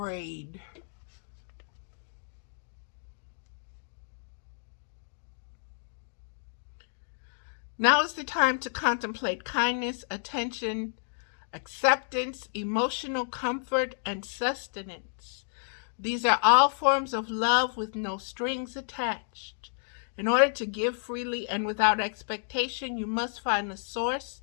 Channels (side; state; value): right; silent; digital silence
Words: Now is the time to contemplate kindness, attention, acceptance, emotional comfort, and sustenance. These are all forms of love with no strings attached. In order to give freely and without expectation, you must find the source